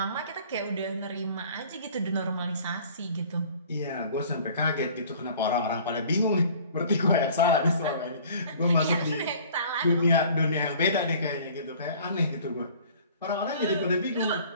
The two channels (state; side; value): inverted; both; correlation -0.50